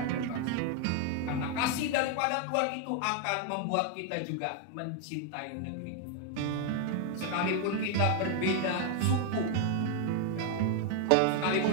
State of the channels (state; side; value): different; both; correlation 0.01